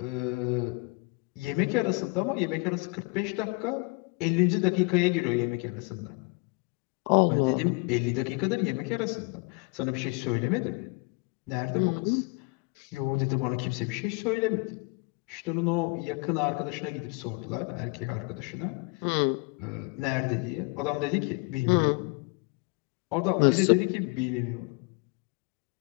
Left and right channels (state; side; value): quieter; right; 30.1 dB